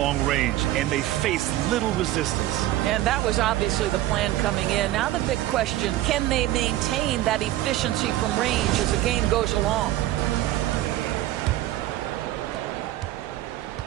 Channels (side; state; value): left; quieter; 15.0 dB